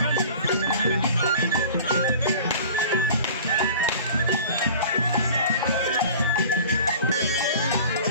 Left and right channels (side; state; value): both; inverted; correlation -0.43